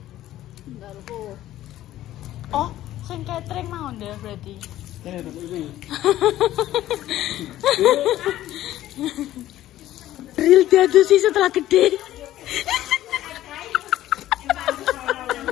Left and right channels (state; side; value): quieter; right; 13.9 dB